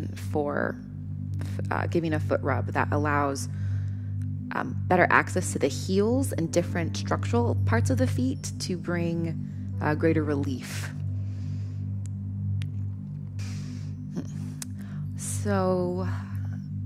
for giving a foot rub that allows better access to the heels and different structural parts of the feet to bring greater relief. So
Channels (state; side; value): identical; both; correlation 1.00